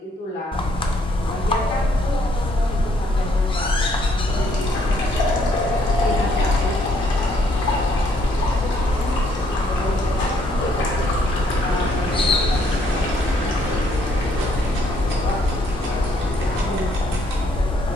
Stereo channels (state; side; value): normal; both; correlation 0.68